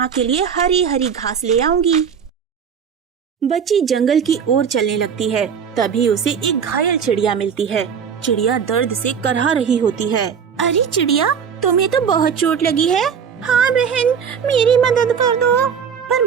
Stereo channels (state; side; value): quieter; left; 7.1 dB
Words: के लिए हरी हरी घास ले आऊंगी। बच्ची जंगल की ओर चलने लगती है। तभी उसे एक घायल चिड़िया मिलती है। चिड़िया दर्द से करहा रही होती है। अरे चिड़िया, तुम्हें तो बहुत चोट लगी है। हाँ बहन, मेरी मदद कर दो। पर